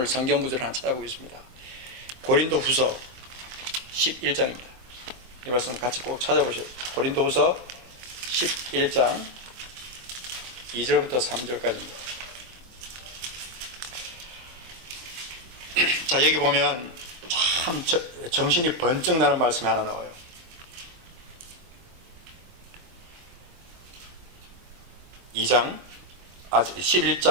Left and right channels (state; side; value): late; left; 24 ms